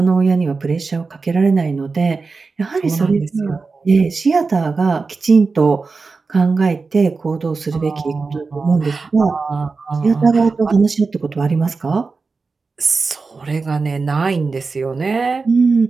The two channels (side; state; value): left; quieter; 4.3 dB